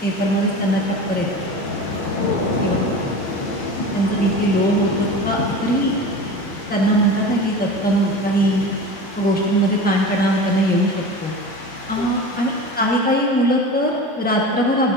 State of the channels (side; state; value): both; normal; correlation 0.32